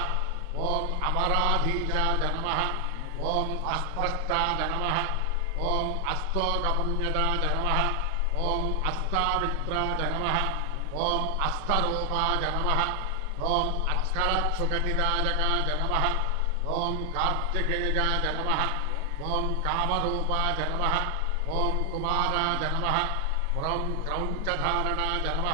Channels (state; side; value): different; both; correlation 0.00